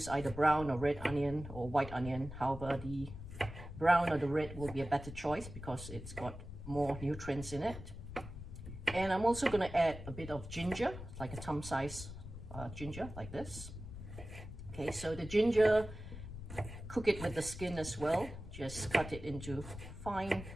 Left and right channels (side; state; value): left; noise; rumble, 11 dB below the sound